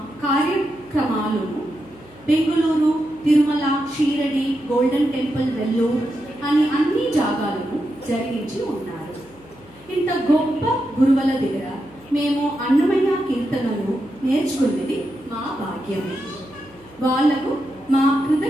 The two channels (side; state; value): left; noise; hum, 26 dB below the sound